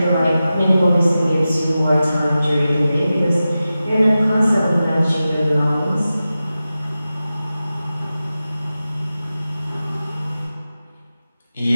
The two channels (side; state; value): both; inverted; correlation -0.94